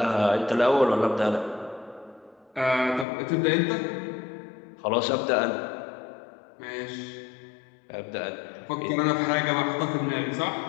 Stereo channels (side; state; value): right; drops out; at 3.1 s